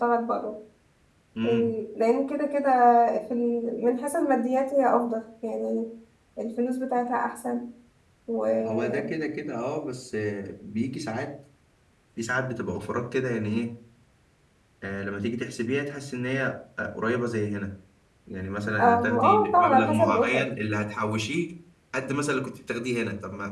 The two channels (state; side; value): identical; both; correlation 1.00